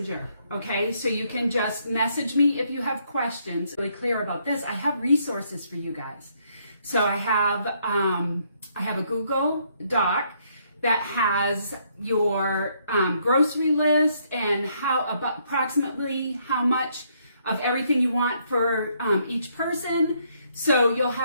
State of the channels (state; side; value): inverted; both; correlation -0.71